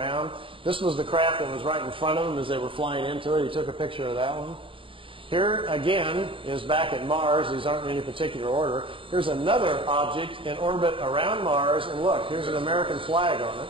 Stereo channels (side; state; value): left; late; 0.25 ms